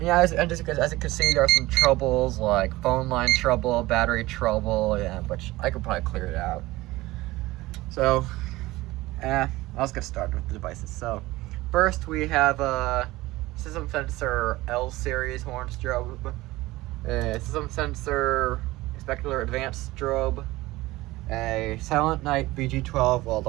Yeah, as you can see, there are some troubles like phone line trouble, battery trouble, which I could probably clear it out. So, let's get started with the devices. So, first we have a system sensor L series horn strobe, a system sensor specular advanced strobe, a Silent Night BG12,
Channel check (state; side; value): quieter; left; 19.0 dB